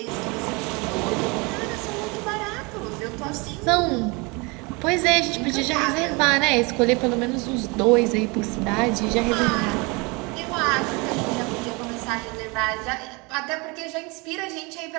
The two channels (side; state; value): left; quieter; 27.8 dB